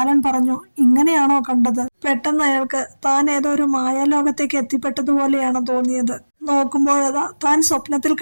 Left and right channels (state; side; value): inverted; both; correlation -1.00